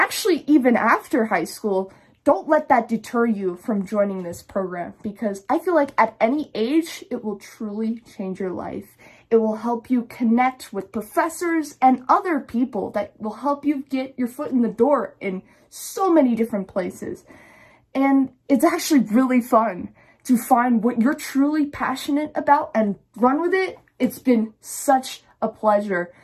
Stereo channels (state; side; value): identical; both; correlation 1.00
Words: even after high school, don't let that deter you from joining this program, because I feel like at any age, it will truly change your life. It will help you connect with professors and other people that will help you get your foot in the door in so many different places. And it's actually really fun to find what you're truly passionate about and run with it. It's been such a pleasure